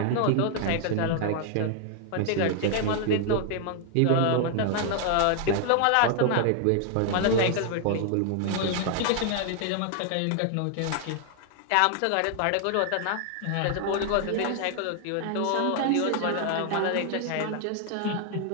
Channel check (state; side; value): different; both; correlation 0.00